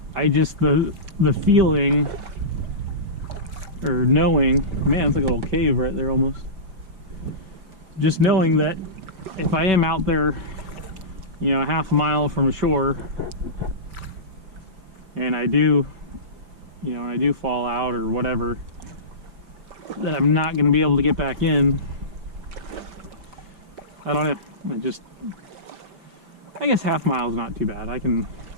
I just, the feeling, or knowing, man, it's like a little cave right there almost. Just knowing that if I am out there, you know, a half a mile from shore, and I do, you know, and I do fall out or whatever, that I'm not going to be able to get back in. I don't know. I guess half mile is not too bad. I can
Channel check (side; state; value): left; late; 5.3 ms